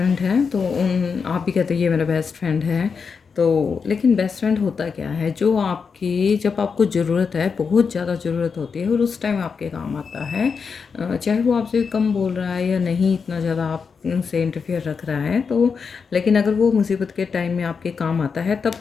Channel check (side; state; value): right; quieter; 5.6 dB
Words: हैं तो उन आप भी कहते हैं ये मेरा बेस्ट फ्रेंड है। तो लेकिन बेस्ट फ्रेंड होता क्या है, जो आपकी जब आपको ज़रूरत है, बहुत ज़्यादा ज़रूरत होती है और उस टाइम आपके काम आता है। चाहे वो आपसे कम बोल रहा है या नहीं इतना ज़्यादा आप से इंटरफेयर रख रहा है, तो लेकिन अगर वो मुसीबत के टाइम में आपके काम आता है तब